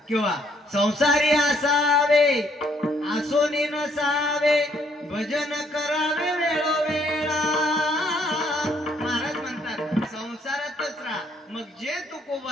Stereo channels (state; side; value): normal; both; correlation 0.68